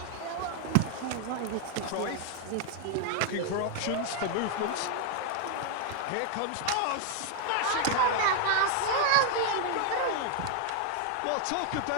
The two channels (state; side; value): different; both; correlation 0.00